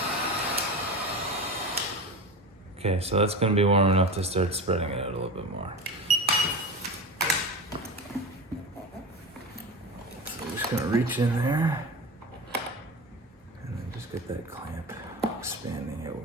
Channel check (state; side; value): normal; both; correlation 0.27